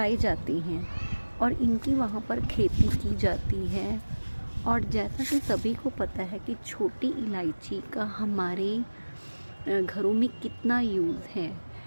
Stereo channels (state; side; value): inverted; both; correlation -1.00